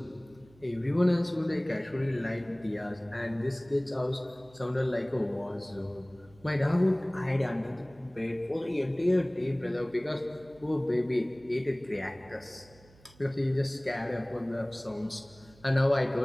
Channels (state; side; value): noise; right; hum, 26 dB below the sound